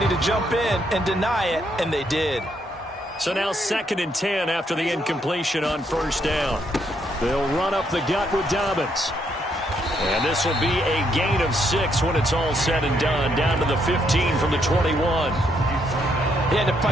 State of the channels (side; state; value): both; normal; correlation 0.74